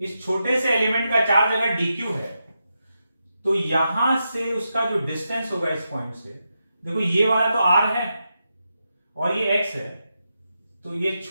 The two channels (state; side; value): inverted; both; correlation -0.86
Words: छोटे से एलिमेंट का चार्ज अगर dq है तो यहां से उसका जो डिस्टेंस होगा इस पॉइंट से, देखो ये वाला तो r है और ये x है, तो ये